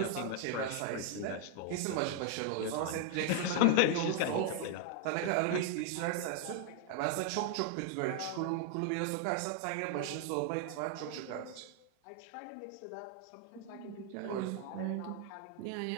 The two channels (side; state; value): both; different; correlation 0.00